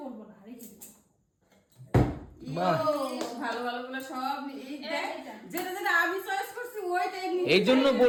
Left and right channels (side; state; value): both; identical; correlation 1.00